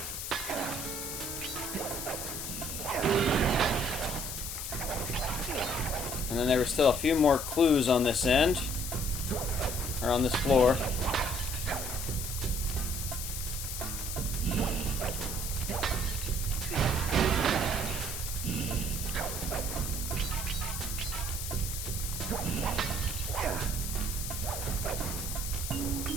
And then there were still a few more clues on this end. Or on this floor.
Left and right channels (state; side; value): noise; left; hiss, 5 dB below the sound